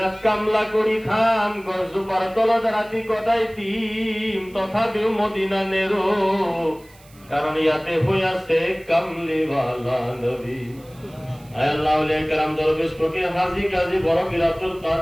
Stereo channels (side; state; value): right; noise; hiss, 27 dB below the sound